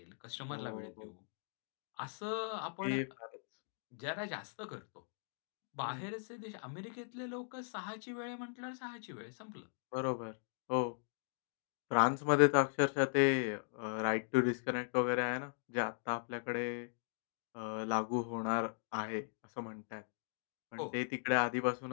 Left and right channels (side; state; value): right; silent; digital silence